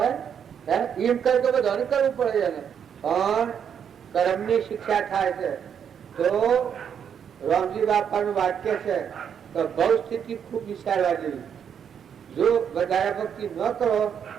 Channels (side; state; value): left; quieter; 8.0 dB